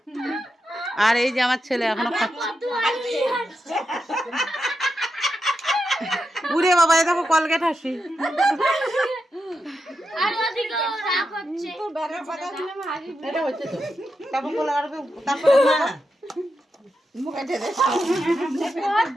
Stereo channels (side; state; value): both; normal; correlation 0.87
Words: আর এই যে আমার ছেলে এখনো খাচ্ছে। উড়ে বাবা, এই দেখো কলগেট হাসি। এটা হচ্ছে তো, তারপর বলে আর তারপর